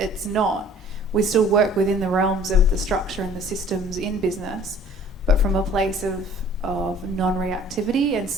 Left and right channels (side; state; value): both; normal; correlation 0.51